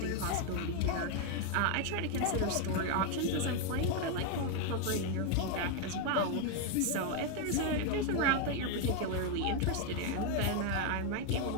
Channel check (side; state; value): both; different; correlation 0.01